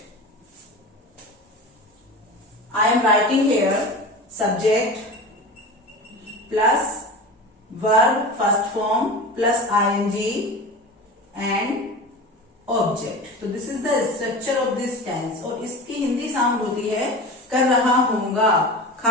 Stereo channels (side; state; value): both; normal; correlation 0.31